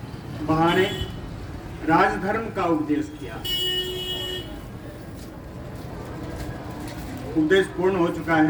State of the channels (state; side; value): identical; both; correlation 1.00